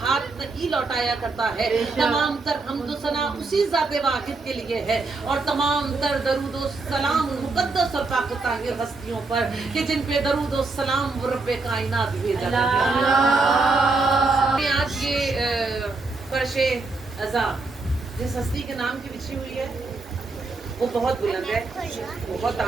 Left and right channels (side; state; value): left; quieter; 3.7 dB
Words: नहीं लौटाया करता है। तमाम तर हम्द सना उसी ज़ात वाहिद के लिए है और तमाम तर दरूद व सलाम मुक़द्दस और पाक ताहिर हस्तियों पर कि जिन पे दरूद व सलाम रब्बे कायनात भेजा गया। आज ये फर्शे अज़ा जिस हस्ती के नाम की बिछी हुई है वो बहुत बुलंद है, बहुत